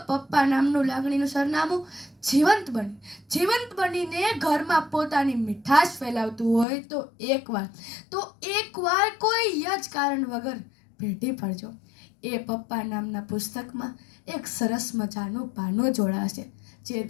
પપ્પા નામનું લાગણીનું સરનામું જીવંત બનીને ઘરમાં પોતાની મીઠાશ ફેલાવતું હોય તો એકવાર કોઈ જ કારણ વગર ભેટી પડજો. એ પપ્પા નામના પુસ્તકમાં એક સરસ મજાનું પાનું જોડાશે જે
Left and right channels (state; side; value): drops out; right; at 6.7 s